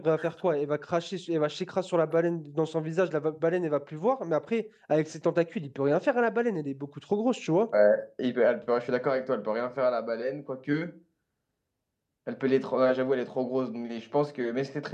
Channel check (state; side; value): identical; both; correlation 1.00